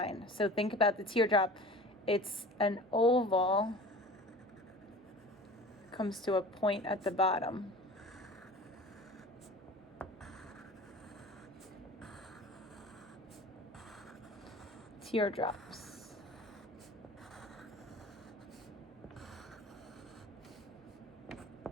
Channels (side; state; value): both; normal; correlation 0.39